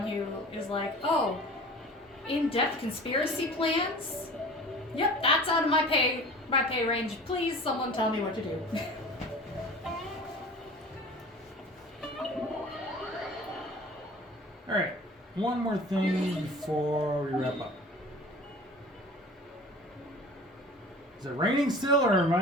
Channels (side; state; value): both; normal; correlation 0.42